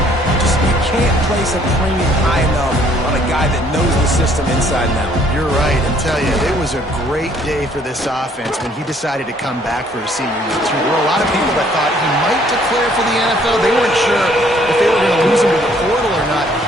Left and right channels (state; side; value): normal; both; correlation 0.62